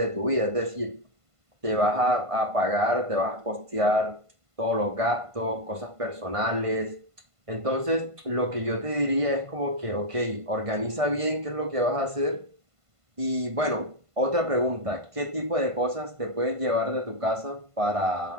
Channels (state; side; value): late; left; 1.5 ms